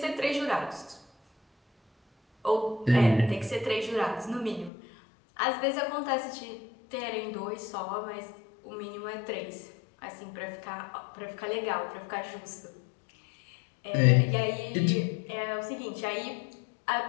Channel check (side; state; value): right; drops out; at 4.7 s